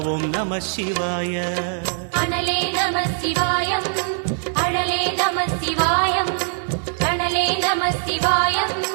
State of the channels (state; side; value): silent; left; 64 dB below the other